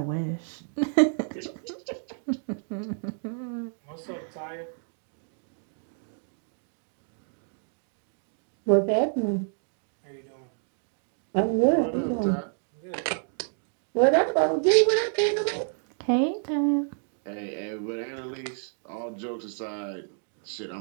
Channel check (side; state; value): left; silent; 59 dB below the other